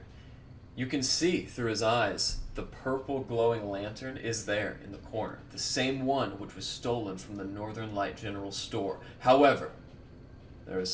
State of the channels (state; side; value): identical; both; correlation 1.00